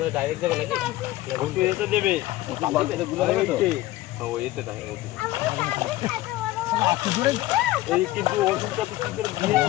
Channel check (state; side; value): quieter; right; 16.6 dB